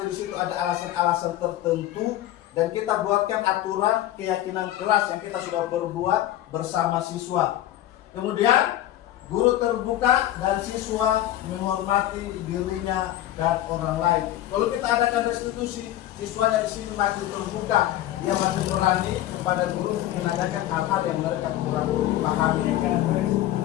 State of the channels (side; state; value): right; quieter; 13.5 dB